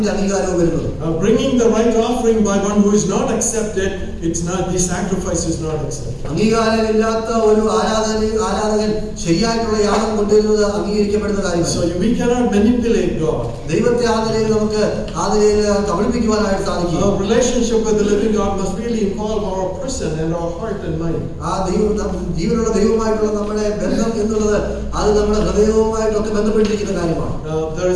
അംഗീകാരവും വരുന്നത്. Bringing the right offering by one who is not accepted, it's not, the sacrifice is not accepted. അംഗീകാരമില്ലാത്ത ഒരു ആരാധകൻ ശരിയായിട്ടുള്ള യാഗം കൊണ്ടുവരുന്നത് അംഗീകരിക്കപ്പെടുന്ന കാര്യമാണ്. So we cannot manipulate God. ദൈവത്തെ നമുക്ക് കബളിപ്പിക്കുവാനായിട്ട് സാധിക്കും. Our relationship with the living God must really involve our person and our heart and mind. ആ ജീവനുള്ള ദൈവവുമായിട്ടുള്ള നമ്മുടെ ബന്ധം എന്നുള്ളത് അത് നമ്മുടെ ഹൃദയവുമായിട്ടൊക്കെ ബന്ധപ്പെട്ടിരിക്കുന്ന കാര്യമാണ്. There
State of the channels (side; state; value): both; identical; correlation 1.00